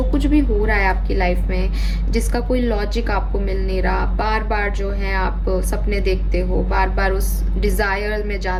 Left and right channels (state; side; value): identical; both; correlation 1.00